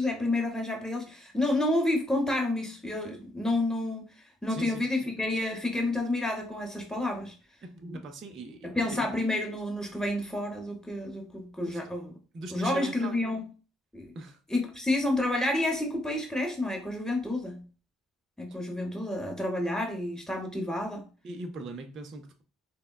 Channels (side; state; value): both; normal; correlation 0.76